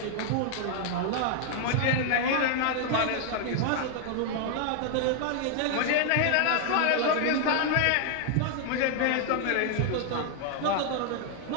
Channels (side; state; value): both; different; correlation 0.00